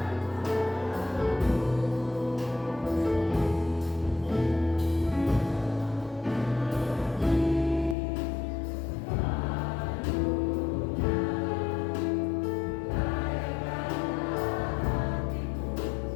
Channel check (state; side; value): drops out; right; at 8.0 s